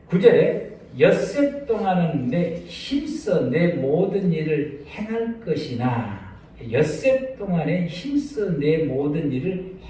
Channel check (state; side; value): identical; both; correlation 1.00